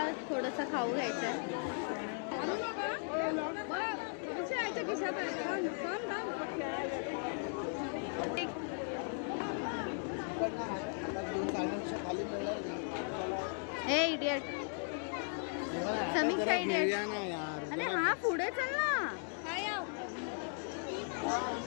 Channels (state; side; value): silent; right; 53 dB below the other